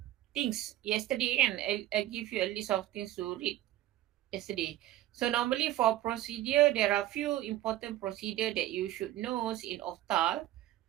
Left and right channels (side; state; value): left; quieter; 14.3 dB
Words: things yesterday, and I give you a list of things to read yesterday. So normally for procedure, there are few important procedure that you should know in Optal.